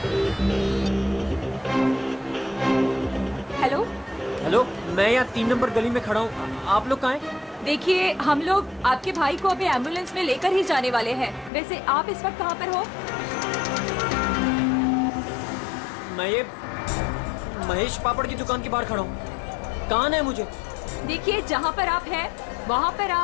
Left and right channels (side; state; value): right; drops out; at 11.5 s